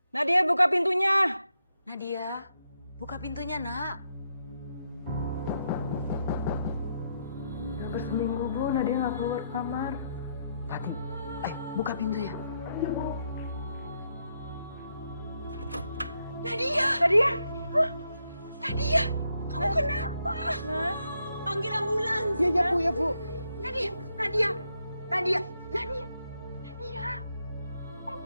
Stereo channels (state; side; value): inverted; both; correlation -0.79